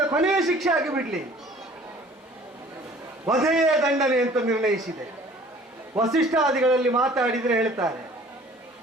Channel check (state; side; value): normal; both; correlation 0.51